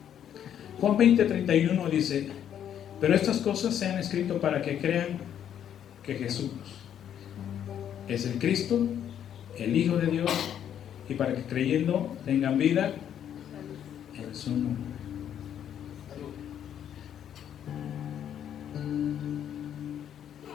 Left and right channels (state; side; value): quieter; right; 9.7 dB